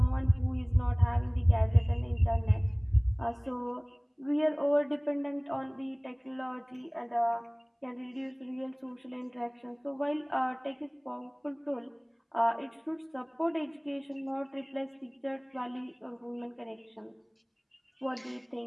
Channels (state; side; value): identical; both; correlation 1.00